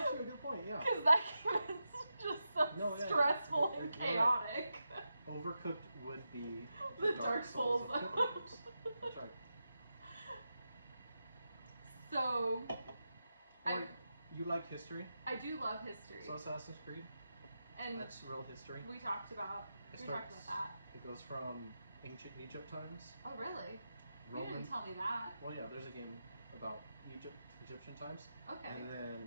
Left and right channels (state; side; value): inverted; both; correlation -0.89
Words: a good point. Yeah. Because that game is just so stressful and You're right. chaotic. Overcooked would be The Dark Souls. of cooking games. That's right. So, You like history? I do love history. So Assassin's Creed, And that's real history. we talked about that. It goes from ancient Egypt times. Oh, really? You Roman. didn't tell me that. Well, yeah, there's a game about Egyptian times. Okay. And